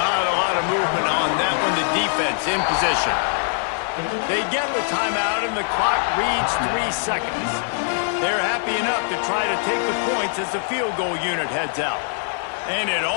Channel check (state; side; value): silent; right; 64 dB below the other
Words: a lot of movement on that one. The defense in position. They get the timeout, and the clock reads 3 seconds. They're happy enough to try to take the points as the field goal unit heads out. And it